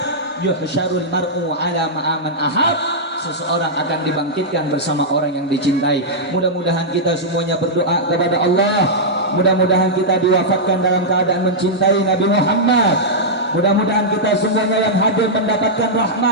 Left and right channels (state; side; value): normal; both; correlation -0.09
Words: yuhsyarul mar'u ala ma'aman ahab. Seseorang akan dibangkitkan bersama orang yang dicintai. Mudah-mudahan kita semuanya berdoa kepada Allah. Mudah-mudahan kita diwafatkan dalam keadaan mencintai Nabi Muhammad. Mudah-mudahan kita semuanya yang hadir mendapatkan